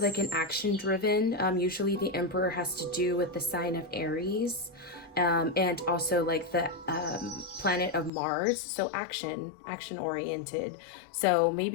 an action driven. Usually the Emperor has to do with the sign of Aries, and also like the planet of Mars. So action oriented. So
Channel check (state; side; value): drops out; right; at 8.1 s